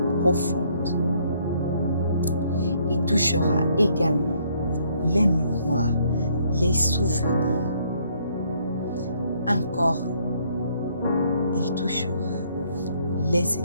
profondes. Il touchera également les mémoires, les souvenirs. Encore, il touchera les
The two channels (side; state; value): both; inverted; correlation -0.67